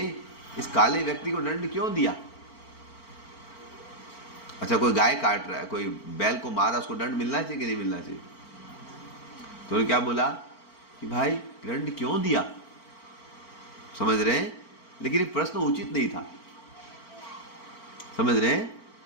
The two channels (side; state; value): right; late; 4.4 ms